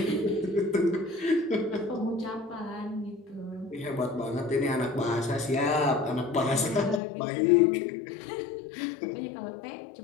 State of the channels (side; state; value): right; drops out; at 7.0 s